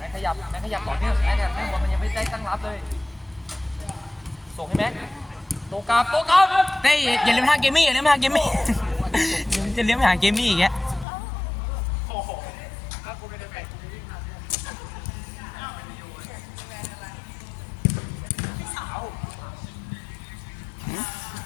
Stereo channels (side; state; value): right; drops out; at 11.1 s